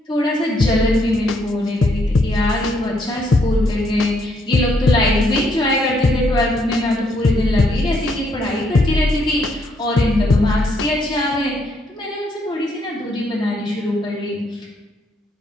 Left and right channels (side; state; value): both; normal; correlation 0.73